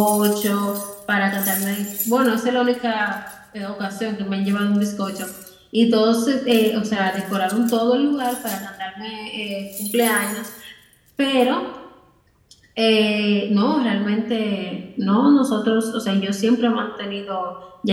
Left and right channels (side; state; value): both; identical; correlation 1.00